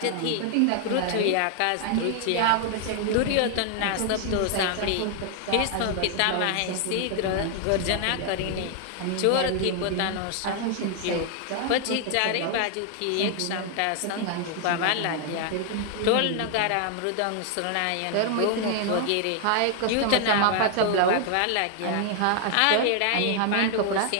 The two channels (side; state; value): both; different; correlation 0.00